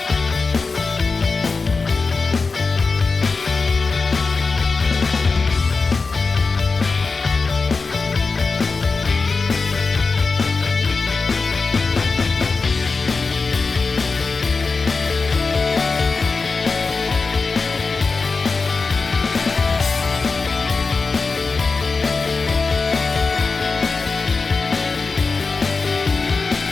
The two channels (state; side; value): quieter; right; 4.2 dB